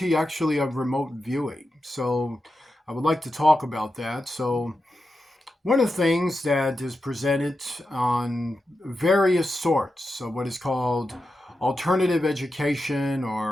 actually of remote viewing. So I would like to talk about that. So one of the things that is presented on various sorts of what is called alternative education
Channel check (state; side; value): normal; both; correlation 0.89